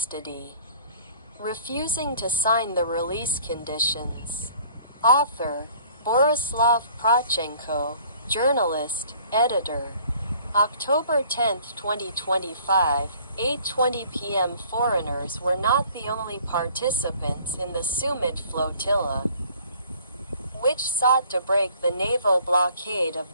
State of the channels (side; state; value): both; inverted; correlation -0.54